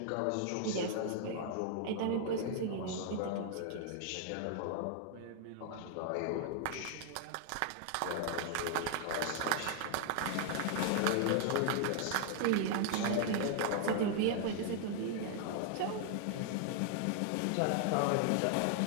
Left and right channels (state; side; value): different; both; correlation 0.00